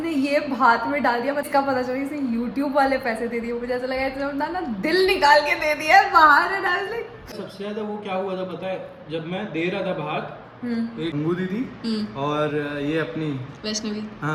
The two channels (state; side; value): identical; both; correlation 1.00